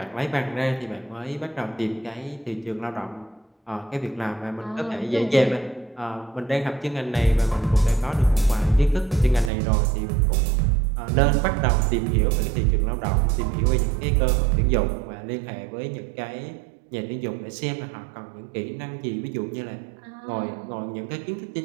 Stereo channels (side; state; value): left; drops out; at 9.5 s